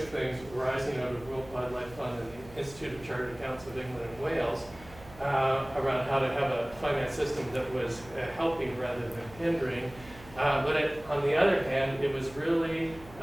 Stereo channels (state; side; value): noise; right; hum, 20 dB below the sound